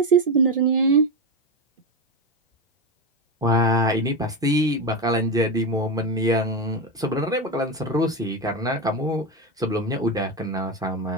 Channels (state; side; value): normal; both; correlation 0.15